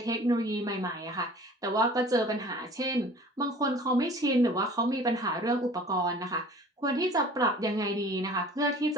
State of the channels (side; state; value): both; normal; correlation 0.46